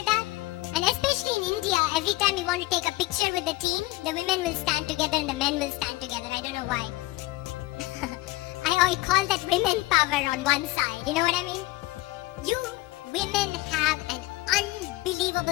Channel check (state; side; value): quieter; right; 20.0 dB